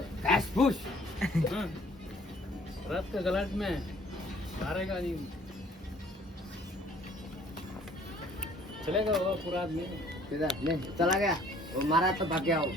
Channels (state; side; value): normal; both; correlation 0.57